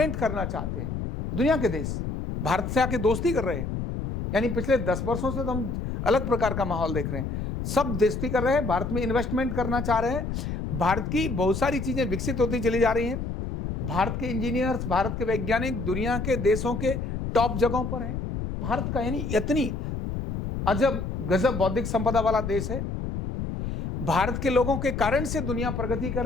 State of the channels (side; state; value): left; noise; rumble, 4 dB below the sound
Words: करना चाहते हैं। दुनिया के देश भारत से आके दोस्ती कर रहे हैं। यानी पिछले 10 वर्षों से तो हम अलग प्रकार का माहौल देख रहे हैं। सब दोस्ती कर रहे हैं, भारत में इन्वेस्टमेंट करना चाह रहे हैं। भारत की बहुत सारी चीजें विकसित होती चली जा रही हैं। भारत के इंजीनियर्स, भारत के वैज्ञानिक दुनिया के देशों के टॉप जगहों पर हैं। भारत का यानी इतनी अजब गजब बौद्धिक संपदा वाला देश है। भारत के लोगों के कारण से दुनिया प्रगति कर